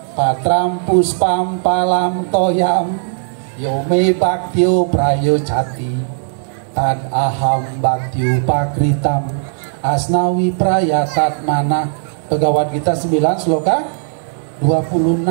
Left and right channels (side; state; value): left; silent; digital silence